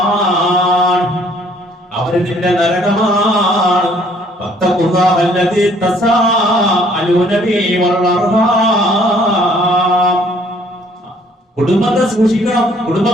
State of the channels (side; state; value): both; normal; correlation 0.60